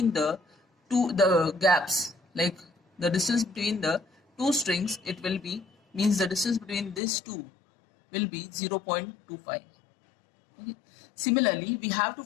the gaps, like the distance between the two strings. It will be means the distance between these two will be 0.25. Okay. Similarly, we have to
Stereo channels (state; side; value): drops out; right; at 7.0 s